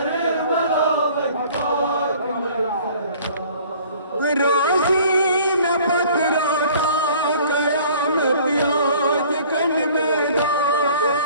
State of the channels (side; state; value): both; inverted; correlation -0.52